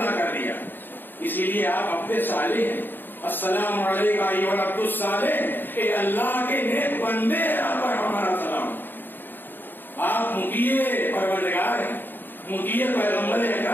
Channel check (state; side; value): late; right; 0.093 ms